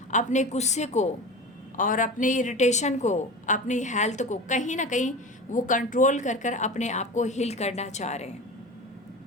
अपने गुस्से को और अपने इरिटेशन को, अपनी हेल्थ को कहीं ना कहीं वो कंट्रोल कर कर अपने आप को हील करना चाह रहे हैं।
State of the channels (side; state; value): both; normal; correlation 0.31